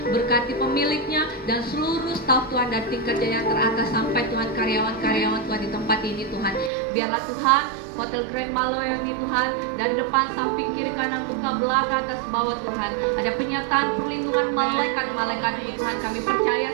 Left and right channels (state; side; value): drops out; left; at 6.7 s